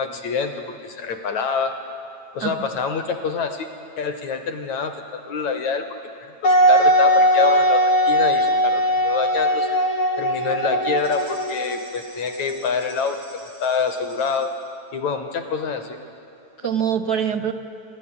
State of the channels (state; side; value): late; right; 9.1 ms